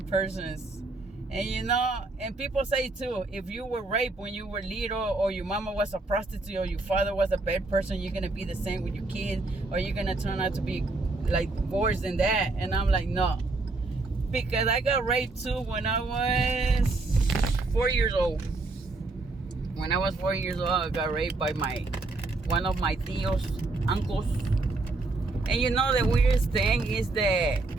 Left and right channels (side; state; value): left; quieter; 3.3 dB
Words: persons. And and people say too, if you were raped when you were little, or your mama was a prostitute, or your father was a bad person, you're going to be the same with your kids, or you're going to turn out to be like worse than that. And I'm like, no. Because I got raped too when I was 4 years old. When I was 4 years old, I got raped by one of my tios, uncles. And the weirdest thing is that